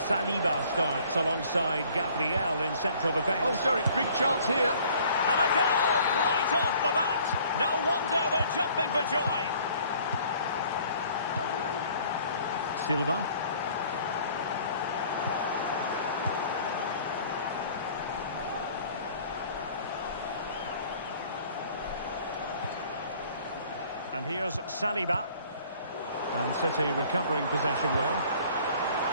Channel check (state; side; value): inverted; both; correlation -0.55